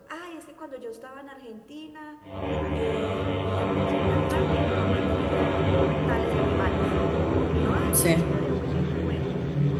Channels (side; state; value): both; identical; correlation 1.00